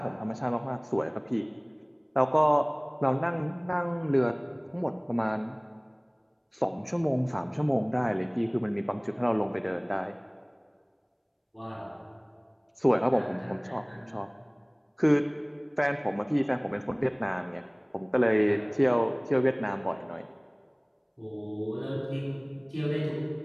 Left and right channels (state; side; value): identical; both; correlation 1.00